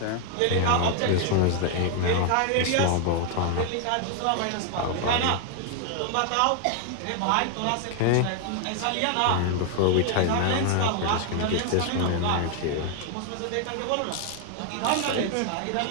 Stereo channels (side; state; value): both; different; correlation 0.00